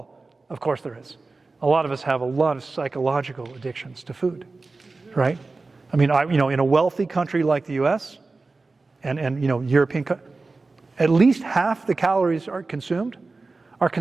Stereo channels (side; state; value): left; quieter; 3.7 dB